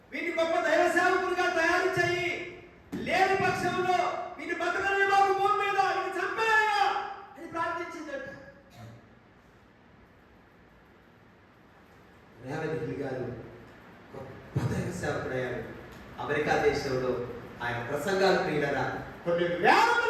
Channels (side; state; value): both; identical; correlation 1.00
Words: వీని గొప్ప దైవ సేవకులుగా తయారు చేయి, లేని పక్షంలో వీని బతకని బాబు భూమి మీద వీని చంపేయ్యా అని ప్రార్థించిందంట. మోడీ గారు గొప్ప దైవ సేవకుడయ్యారు. అమెరికా దేశంలో ఆయన ప్రసంగాలు ప్రియులరా కొన్ని వేల